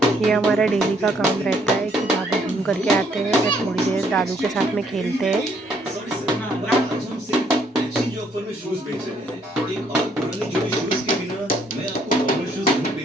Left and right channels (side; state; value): both; normal; correlation 0.67